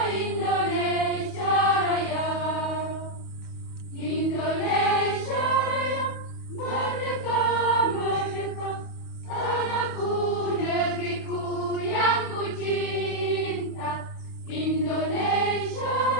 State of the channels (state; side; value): late; right; 28 ms